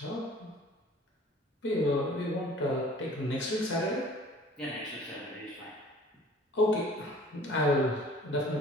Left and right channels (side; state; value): both; normal; correlation 0.50